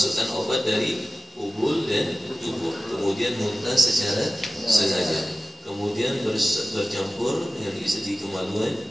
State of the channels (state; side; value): normal; both; correlation 0.95